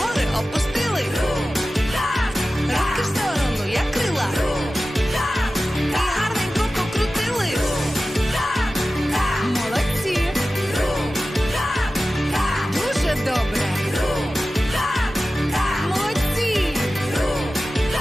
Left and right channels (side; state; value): both; normal; correlation 0.95